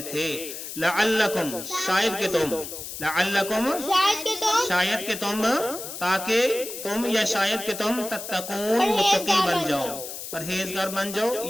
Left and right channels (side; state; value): left; noise; hiss, 9 dB below the sound